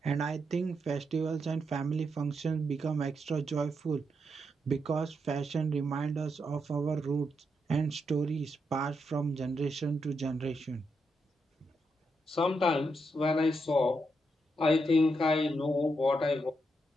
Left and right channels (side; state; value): both; normal; correlation 0.82